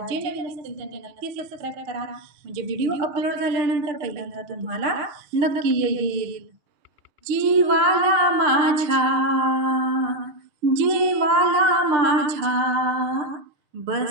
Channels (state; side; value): late; left; 6.6 ms